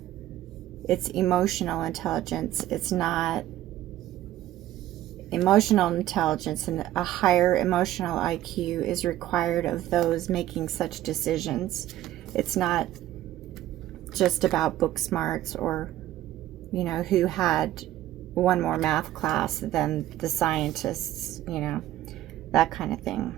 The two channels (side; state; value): left; quieter; 13.9 dB